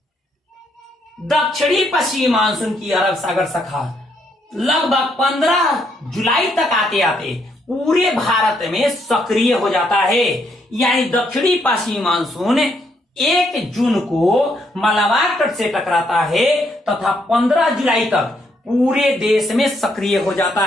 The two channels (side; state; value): both; normal; correlation 0.74